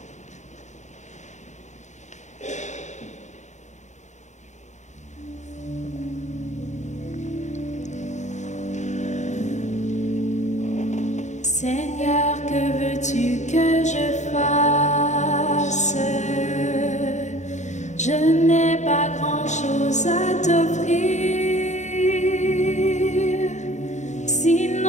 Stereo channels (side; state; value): right; late; 0.34 ms